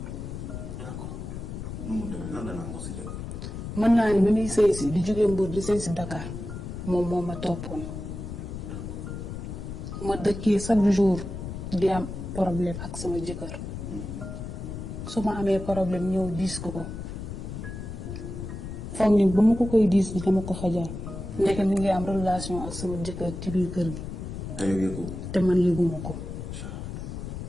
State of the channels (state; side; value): noise; left; rumble, 7 dB below the sound